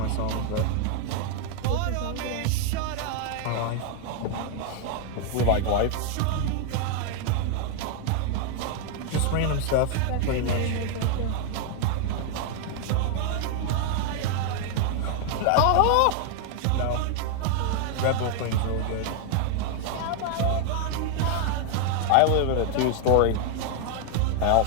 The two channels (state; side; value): different; both; correlation 0.00